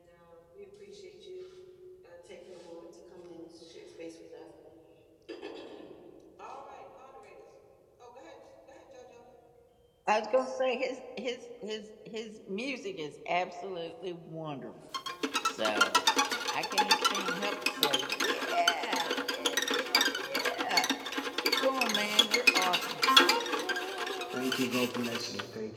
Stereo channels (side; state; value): both; identical; correlation 1.00